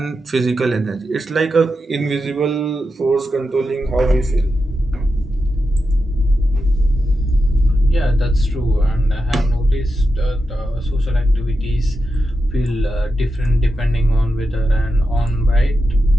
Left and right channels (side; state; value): both; normal; correlation 0.88